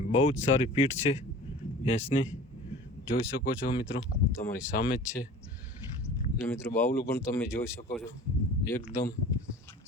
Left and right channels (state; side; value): normal; both; correlation 0.42